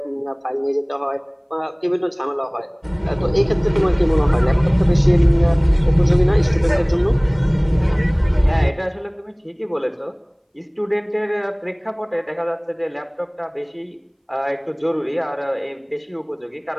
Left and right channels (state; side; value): identical; both; correlation 1.00